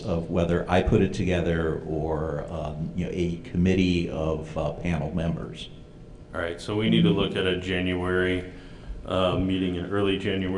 of whether I put it together or a committee of panel members. All right, so we need to look at a January meeting, an early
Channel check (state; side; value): identical; both; correlation 1.00